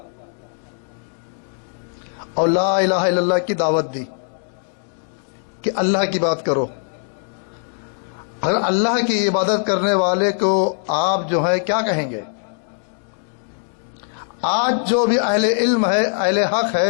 اور لا الہ الا اللہ کی دعوت دی کہ اللہ کی بات کرو. اگر اللہ کی عبادت کرنے والے کو آپ جو ہے کیا کہیں گے؟ آج جو بھی اہل علم ہے، اہل حق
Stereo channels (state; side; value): silent; right; digital silence